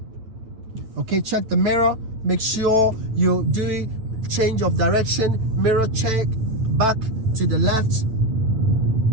Okay, check the mirror, make sure you do change of direction, mirror check, back to the left.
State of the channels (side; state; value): left; late; 9.1 ms